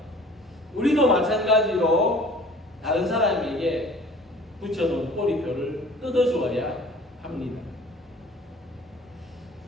우리도 마찬가지로 다른 사람에게 붙여놓은 꼬리표를 뜯어주어야 합니다.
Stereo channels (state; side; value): normal; both; correlation 0.49